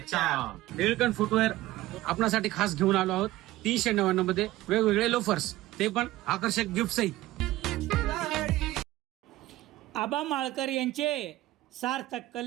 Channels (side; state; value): left; quieter; 16.7 dB